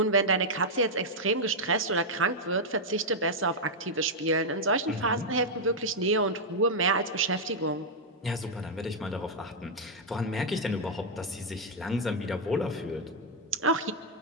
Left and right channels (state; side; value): normal; both; correlation -0.03